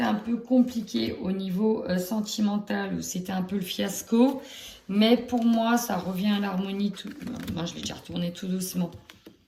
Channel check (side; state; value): both; identical; correlation 1.00